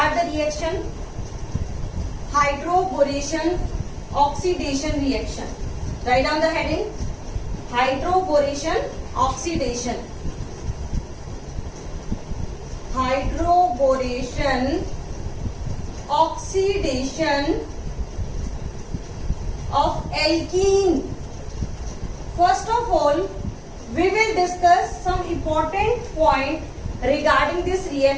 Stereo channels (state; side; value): identical; both; correlation 1.00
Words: the reaction. Hydroboration oxidation reaction. Write down the heading. Hydroboration oxidation. Hydroboration oxidation of alkene. First of all, we will discuss some important point regarding this